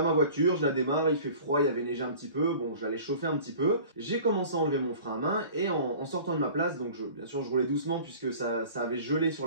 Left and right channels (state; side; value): inverted; both; correlation -0.43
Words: ma voiture, je la démarre, il fait froid, il y avait neigé un petit peu, bon j'allais chauffer un petit peu, j'ai commencé à enlever mon frein à main et en sortant de ma place, donc bien sûr je roulais doucement puisque ça avait gelé sur